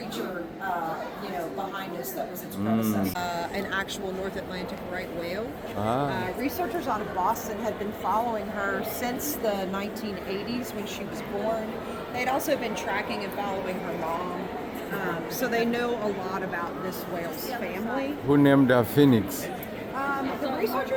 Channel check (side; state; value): both; identical; correlation 1.00